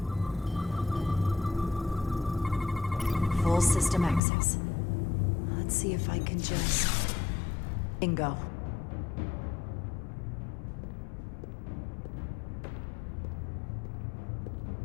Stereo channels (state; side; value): drops out; right; at 4.2 s